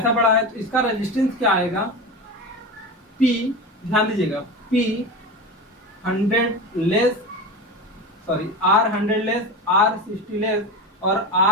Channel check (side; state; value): both; normal; correlation 0.25